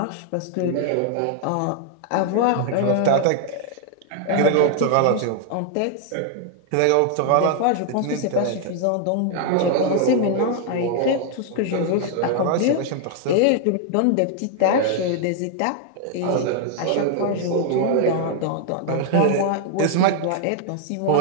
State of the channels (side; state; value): both; different; correlation 0.00